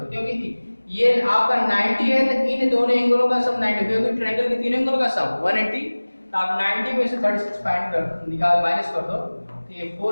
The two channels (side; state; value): both; inverted; correlation -1.00